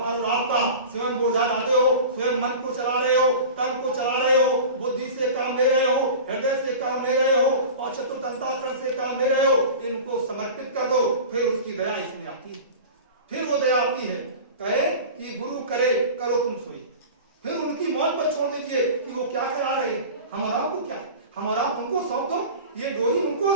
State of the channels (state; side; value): inverted; both; correlation -0.35